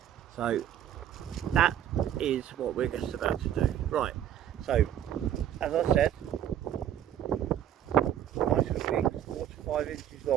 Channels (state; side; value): quieter; left; 10.8 dB